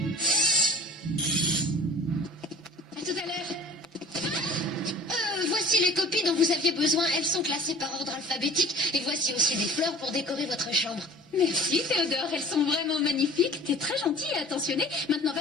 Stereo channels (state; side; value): normal; both; correlation 0.44